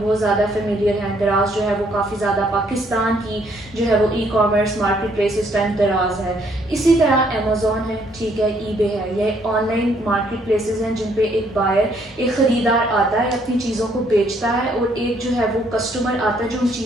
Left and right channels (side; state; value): both; normal; correlation 0.67